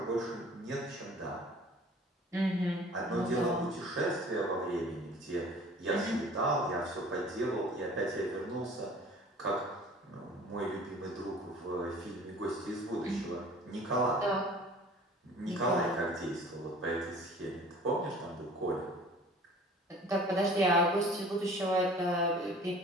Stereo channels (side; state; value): both; normal; correlation 0.47